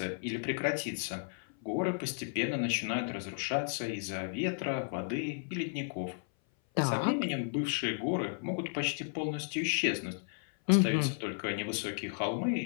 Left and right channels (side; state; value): right; silent; 55 dB below the other